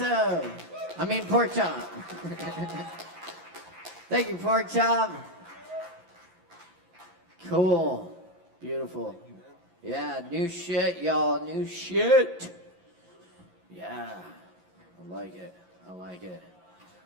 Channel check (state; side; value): late; left; 11 ms